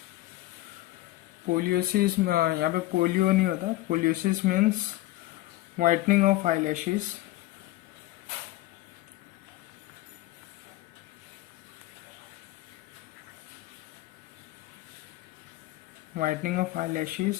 पोलियोसिस यहाँ पे polio नहीं होता. Poliosis means whitening of eyelashes. Whitening of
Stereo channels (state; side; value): quieter; right; 17.3 dB